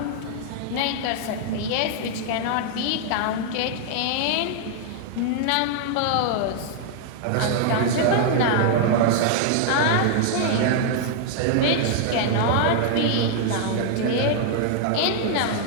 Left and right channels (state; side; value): different; both; correlation -0.01